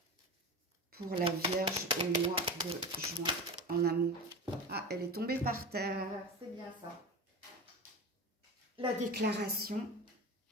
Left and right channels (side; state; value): both; normal; correlation 0.28